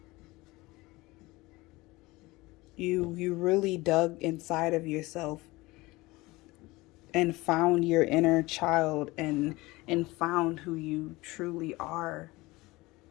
You really dug inside of yourself and found your inner child and found who you truly are,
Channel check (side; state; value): right; quieter; 21.2 dB